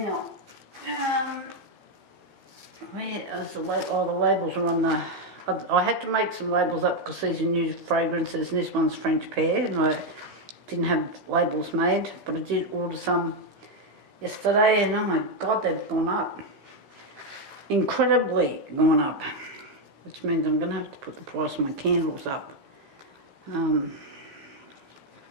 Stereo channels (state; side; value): late; left; 15 ms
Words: where is the label? Oh, the labels are on the... I had to make some labels up because these are new fragrances, and this one's French pear, and I didn't have labels made, but I did order some yesterday, and oh my god, they've gone up. Incredibly gone up. Which means I'm going to have to put the price of my candles up. So